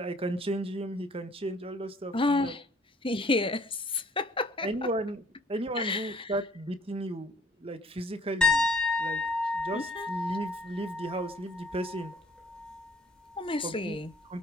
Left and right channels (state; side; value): normal; both; correlation 0.57